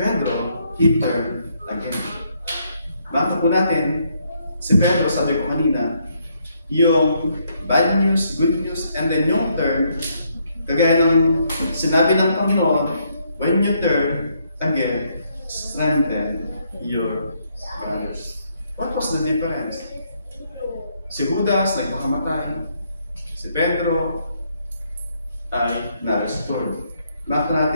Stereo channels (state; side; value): inverted; both; correlation -0.73